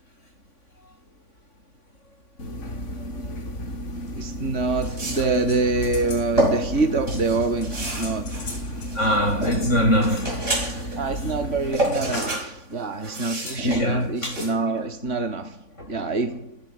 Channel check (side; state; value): right; late; 3.5 ms